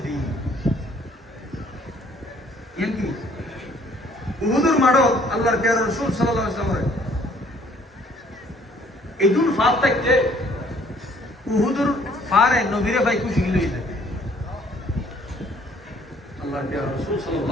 দি ইয়েন কি উহুদের মাঠত আল্লাহর প্যারা রাসূল সাল্লাল্লাহু আলাইহি ওয়াসাল্লাম এদুন ফাত থাকতে উহুদের ফারে নবীরে ভাই খুশি লইলে আল্লাহর প্যারা রাসূল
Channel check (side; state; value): both; normal; correlation 0.60